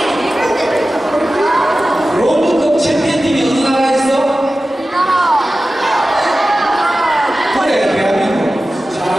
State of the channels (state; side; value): normal; both; correlation 0.95